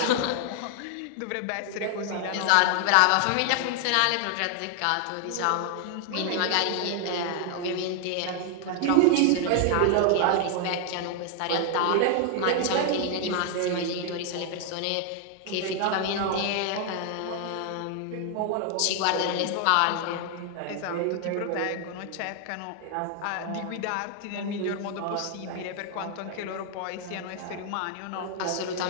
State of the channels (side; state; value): both; different; correlation 0.00